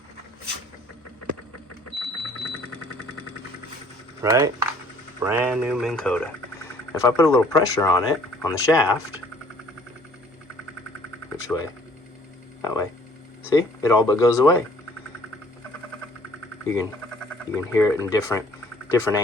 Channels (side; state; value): both; normal; correlation 0.57